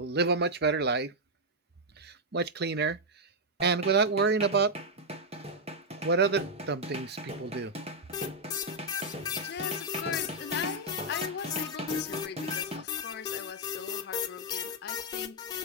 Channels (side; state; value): both; normal; correlation -0.03